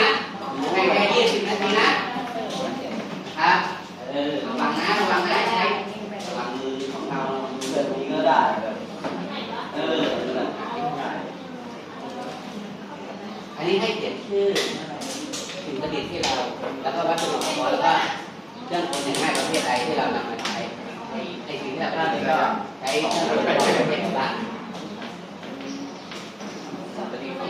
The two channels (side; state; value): both; identical; correlation 1.00